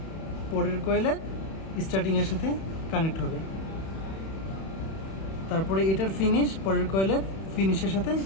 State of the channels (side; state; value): right; late; 31 ms